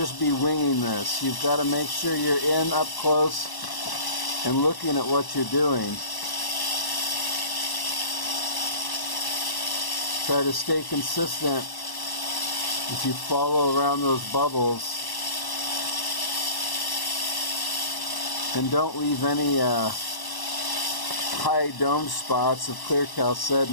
be winging this. You've got to make sure you're in up close and looking at what you're doing. Try to stay consistent as you follow around those bubbles, and don't leave any high dome spots of clear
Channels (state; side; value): late; right; 1.1 ms